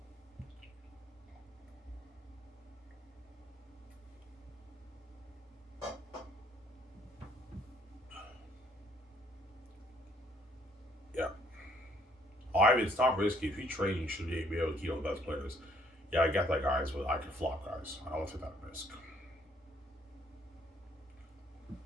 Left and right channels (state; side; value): normal; both; correlation 0.65